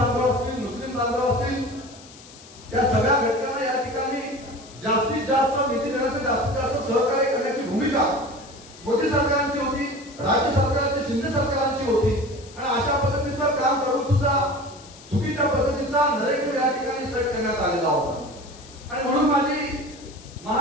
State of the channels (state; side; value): noise; left; hiss, 20 dB below the sound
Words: असतील, मुस्लिम बांधव असतील, या सगळ्या घटकांना या ठिकाणी जास्तीत जास्त निधी देण्यासाठी जास्तीत जास्त सहकार्य करण्याची भूमिका मोदी सरकारची होती, राज्य सरकारची, शिंदे सरकारची होती. आणि अशा पद्धतीचं काम करून सुद्धा चुकीच्या पद्धतीचा नरेटिव्ह या ठिकाणी सेट करण्यात आलेला होता. आणि म्हणून माझी